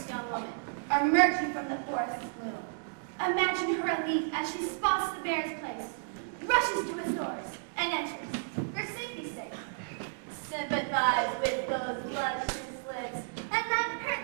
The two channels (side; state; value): left; silent; digital silence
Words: young woman emerging from the forest's gloom. Imagine her relief as she spots the bear's place, rushes to its doors, and enters, for safety's sake. Sympathize with those luscious lips and that